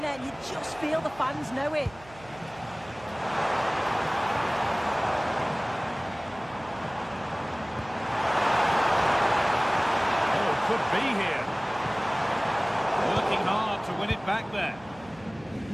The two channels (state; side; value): noise; right; hum, 22 dB below the sound